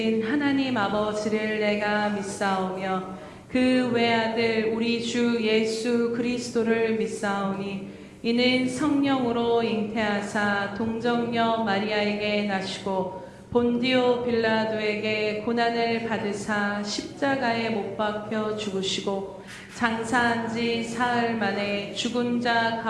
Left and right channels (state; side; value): identical; both; correlation 1.00